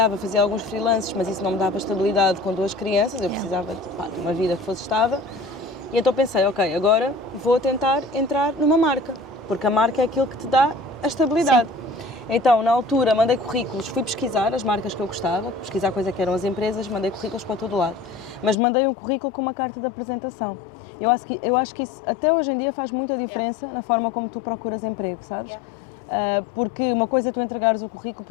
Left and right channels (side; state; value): right; drops out; at 18.6 s